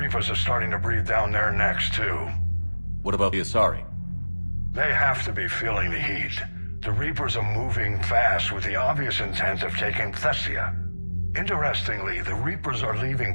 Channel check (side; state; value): both; inverted; correlation -1.00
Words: are starting to breathe down their necks, too. What about the Asari? They have to be feeling the heat. The Reapers are moving fast with the obvious intent of taking Thessia. Interestingly, the Reapers are